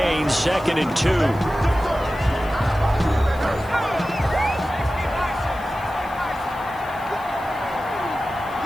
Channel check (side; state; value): left; noise; hiss, 24 dB below the sound